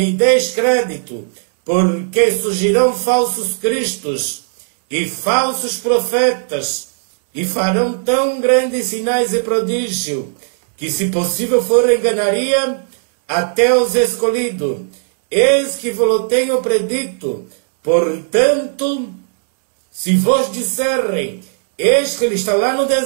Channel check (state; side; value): silent; left; digital silence